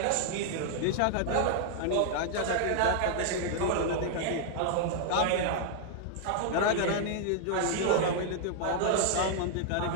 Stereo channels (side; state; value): both; different; correlation -0.01